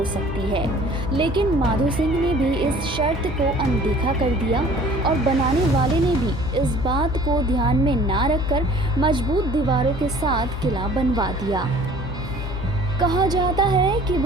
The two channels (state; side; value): normal; both; correlation 0.50